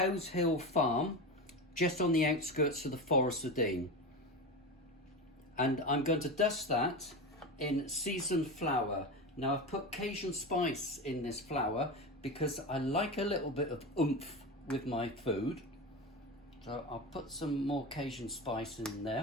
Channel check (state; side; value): normal; both; correlation 0.23